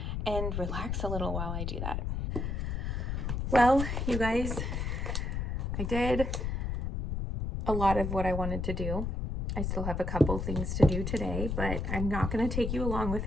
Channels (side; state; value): left; noise; rumble, 2 dB below the sound